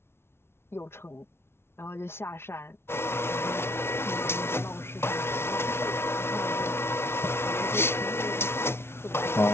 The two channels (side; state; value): right; late; 0.12 ms